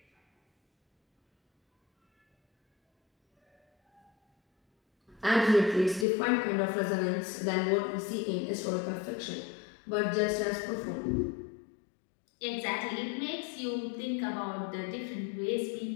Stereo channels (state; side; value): drops out; right; at 6.1 s